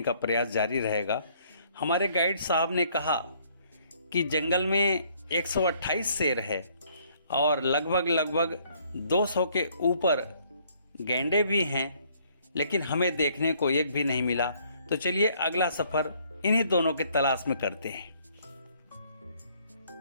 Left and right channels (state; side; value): inverted; both; correlation -0.64